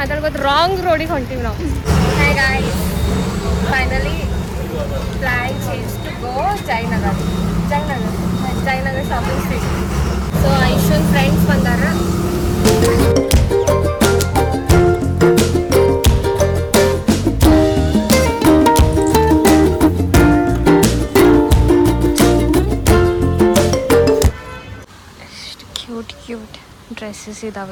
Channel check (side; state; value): both; identical; correlation 1.00